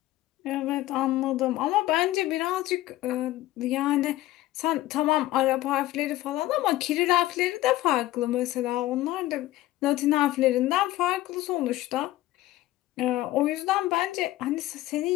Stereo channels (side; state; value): right; quieter; 16.2 dB